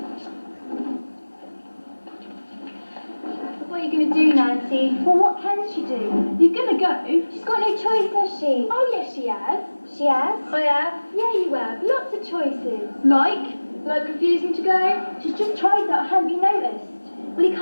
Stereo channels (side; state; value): both; inverted; correlation -1.00